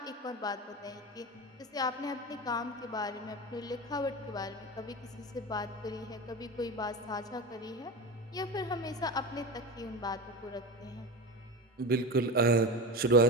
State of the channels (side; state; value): both; normal; correlation 0.24